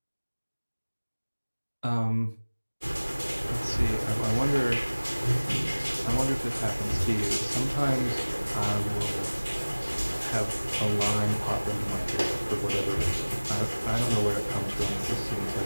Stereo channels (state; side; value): inverted; both; correlation -1.00